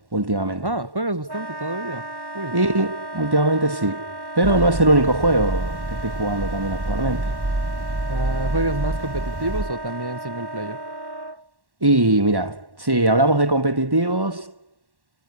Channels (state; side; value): late; left; 1.1 ms